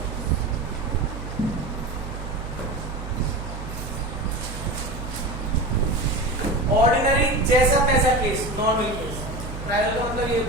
ऑर्डिनरी जैसा तैसा केस, नॉर्मल केस। ट्रायंगल का मतलब ये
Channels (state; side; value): noise; right; hum, 8 dB below the sound